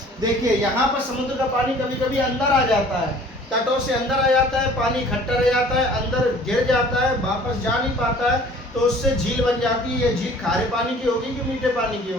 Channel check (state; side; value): normal; both; correlation 0.50